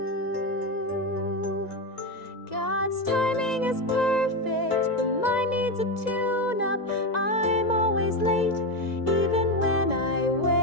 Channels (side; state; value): right; late; 1.9 ms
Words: God's timing is perfect, but mine needs a tune-up. I'm always late, even when I